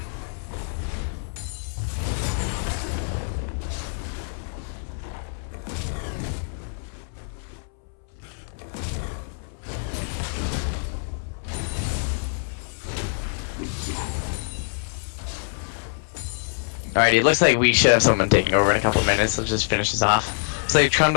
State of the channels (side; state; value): right; silent; 62 dB below the other